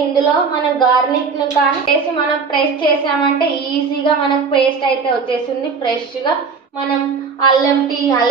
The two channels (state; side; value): quieter; left; 5.2 dB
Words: ఇందులో మనం గార్లిక్ కానీ వేసి మనం ప్రెస్ చేసామంటే ఈజీగా మనకు పేస్ట్ అయితే వచ్చేస్తుంది ఫ్రెష్ గా. మనం అల్లం టీ